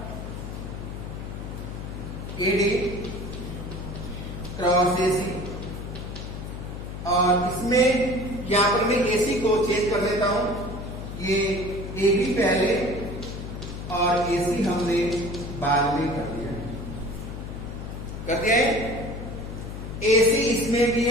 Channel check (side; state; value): left; noise; hum, 8 dB below the sound